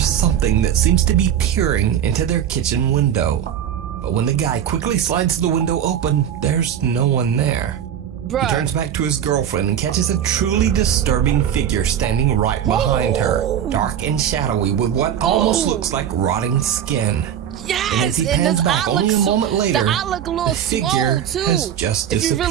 that seems to be peering into their kitchen window. But when the guy quickly slides the window open, there's no one there. Bruh. He turns back to his girlfriend and catches a truly disturbing figure standing right behind her, dark and shadowy with what almost looks like rotting skin. And as Yes, he and pans this back eye only a looks moment later, the eye look a little the figure swole too. has just if you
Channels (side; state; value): left; quieter; 9.5 dB